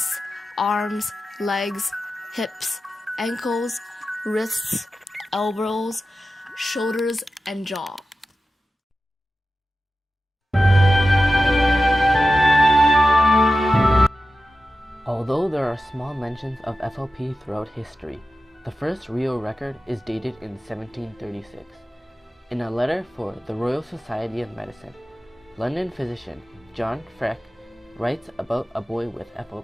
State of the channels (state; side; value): normal; both; correlation 0.92